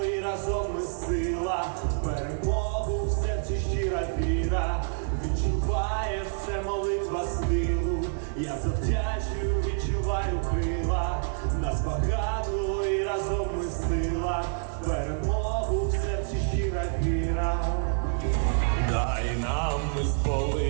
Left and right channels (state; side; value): silent; left; digital silence